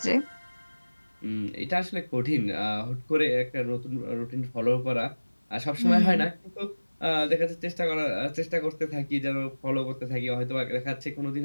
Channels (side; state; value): both; inverted; correlation -1.00